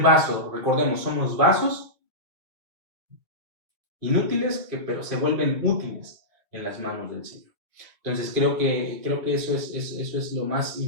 vaso. Recordemos, somos vasos inútiles, pero se vuelven útiles en las manos del Señor. Entonces creo que eso es lo más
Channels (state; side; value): late; left; 2.0 ms